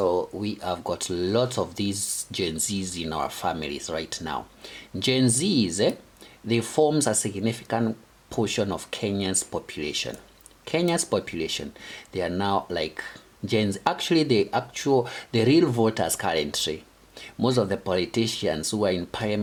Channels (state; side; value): identical; both; correlation 1.00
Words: we have got lots of these Gen Zs in our families right now. Gen Zs, they forms a significant portion of Kenya's population. Kenya's population, they are now like Gen Z. Actually, the real voters currently, most of the politicians who are in